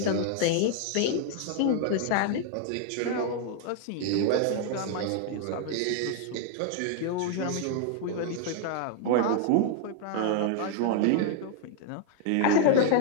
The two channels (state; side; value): different; both; correlation 0.00